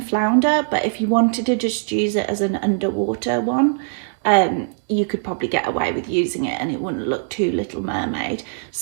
flounder, but if you wanted to just use it as an underwater one, you could probably get away with using it and it wouldn't look too Little Mermaid.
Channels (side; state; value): left; silent; digital silence